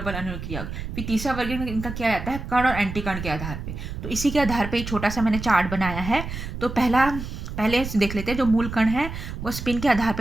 अन्योयी क्रिया होगी। फिर तीसरा वर्गीकरण इनका किया जाता है कण और एंटी कण के आधार पे। तो इसी के आधार पे एक छोटा सा मैंने चार्ट बनाया है। तो पहले देख लेते हैं, जो मूल कण है वो स्पिन के आधार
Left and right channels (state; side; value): noise; right; rumble, 7 dB below the sound